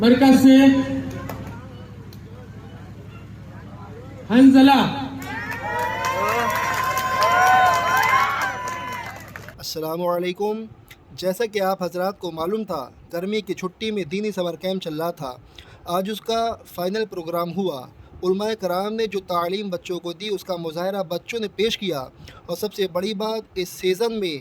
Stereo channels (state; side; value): identical; both; correlation 1.00